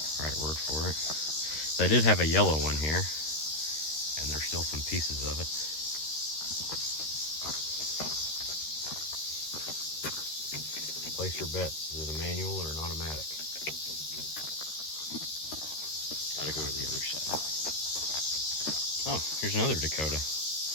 right word for it. They did have a yellow one here, and there's still some pieces of it. Place your bets. Is it a manual or an automatic? Gotta go to the other side. Oh, here's another Dakota.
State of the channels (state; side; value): late; right; 13 ms